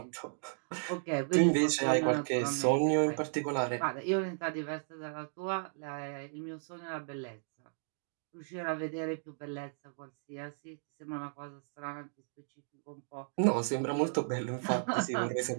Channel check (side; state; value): left; silent; digital silence